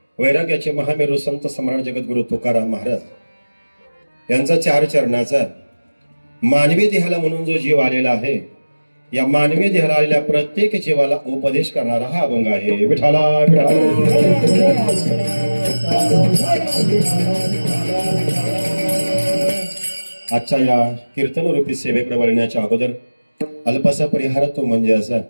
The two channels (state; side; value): inverted; both; correlation -1.00